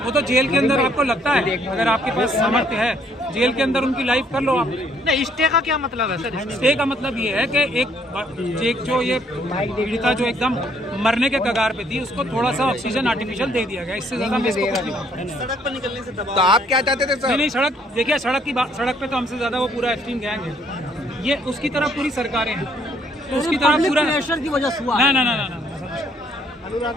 वो तो जेल के अंदर, आपको लगता है अगर आपके पास सामर्थ्य है जेल के अंदर उनकी लाइफ कर लो आप। नहीं, स्टे का क्या मतलब है सर? स्टे का मतलब ये है कि एक जो ये पीड़िता जो एकदम मरने के कगार पे थी उसको थोड़ा सा ऑक्सीजन आर्टिफिशियल दे दिया गया, इससे ज्यादा मैं इसको कुछ नहीं मानता। सड़क पर निकलने से दबाव। तो आप क्या चाहते थे सर? नहीं, सड़क देखिए, सड़क पे तो हमसे ज्यादा वो पूरा एप्स्टीन गैंग है, ये उसकी तरफ पूरी सरकारें हैं, तो उसकी तरफ पूरा प्रेशर की वजह से हुआ। ना।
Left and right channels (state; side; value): normal; both; correlation 0.65